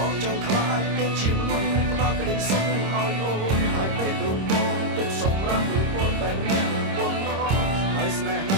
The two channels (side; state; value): left; late; 26 ms